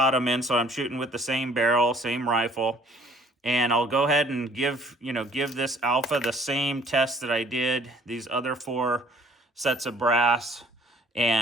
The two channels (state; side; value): normal; both; correlation 0.57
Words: them in, so I'm shooting with the same barrel, same rifle. And I'll go ahead and give this alpha the same test that I did these other 4 sets of brass,